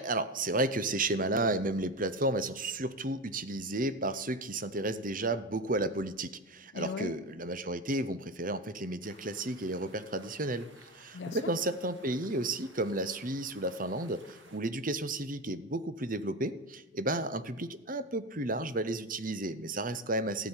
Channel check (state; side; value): normal; both; correlation 0.23